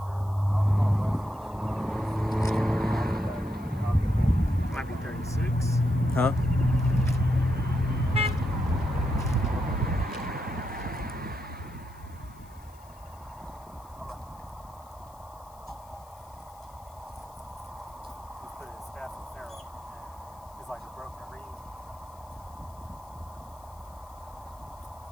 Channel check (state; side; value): noise; left; hiss, 26 dB below the sound